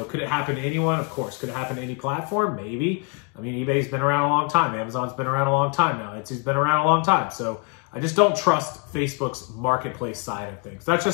Could it happen to anyone? Of course. Could it happen to any platform? Maybe. I mean, eBay's been around a long time. Amazon's been around a long time now. Etsy's been around a long time. So I just don't trust Facebook's marketplace side of things. That's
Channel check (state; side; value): quieter; right; 35.0 dB